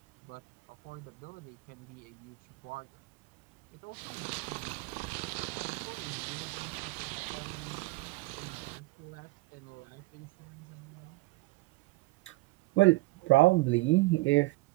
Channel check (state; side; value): quieter; left; 22.3 dB